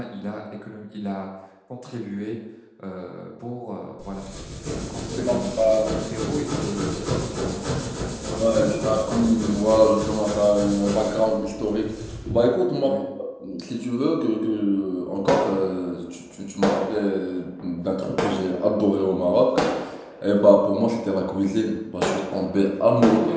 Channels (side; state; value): both; identical; correlation 1.00